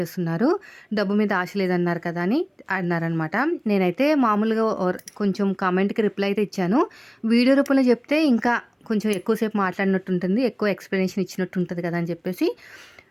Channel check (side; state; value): both; identical; correlation 1.00